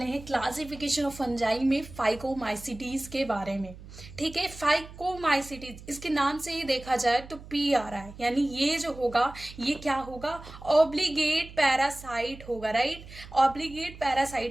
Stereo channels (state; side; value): noise; right; hum, 16 dB below the sound